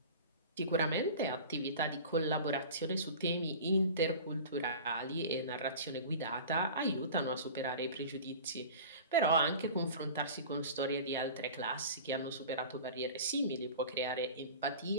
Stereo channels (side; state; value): both; inverted; correlation -0.38